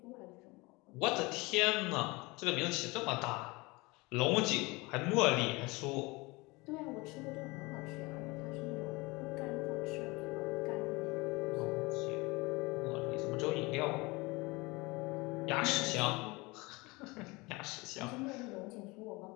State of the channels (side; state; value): right; quieter; 24.4 dB